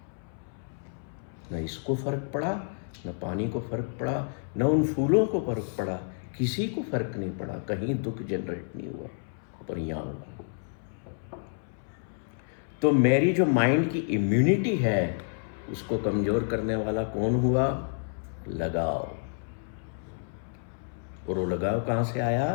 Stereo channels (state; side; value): silent; right; 58 dB below the other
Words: न इसको फर्क पड़ा, न पानी को फर्क पड़ा, न उन फूलों को फर्क पड़ा, किसी को फर्क नहीं पड़ा। कहीं दुख जनरेट नहीं हुआ, पर यहाँ हुआ। तो मेरी जो माइंड की इम्यूनिटी है उसको कमजोर करने वाला कौन हुआ? लगाव। और वो लगाव कहाँ से